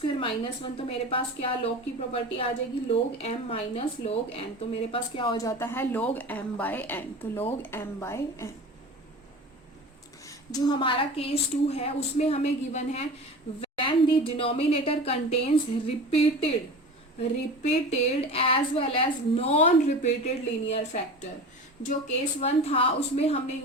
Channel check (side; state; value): both; normal; correlation 0.34